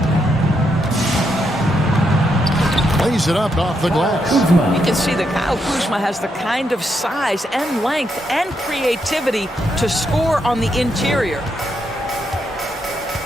Lays it up off the glass. You can see that Kyle Kuzma has the kind of size and length and creativity to score on the interior.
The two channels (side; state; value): both; normal; correlation 0.80